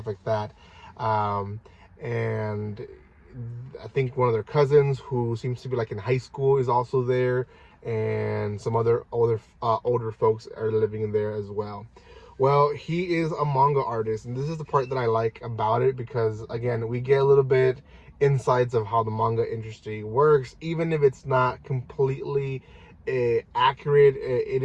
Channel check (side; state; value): both; identical; correlation 1.00